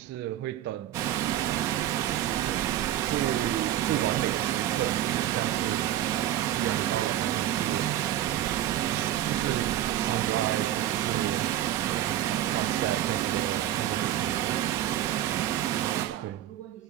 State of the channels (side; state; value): left; quieter; 12.5 dB